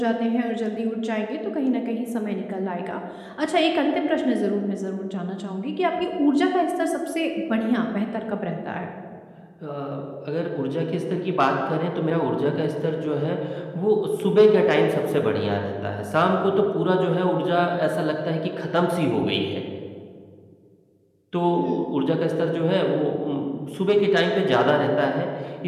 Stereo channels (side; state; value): both; identical; correlation 1.00